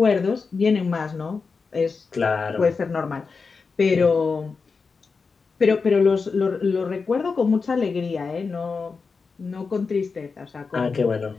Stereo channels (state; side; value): quieter; right; 4.8 dB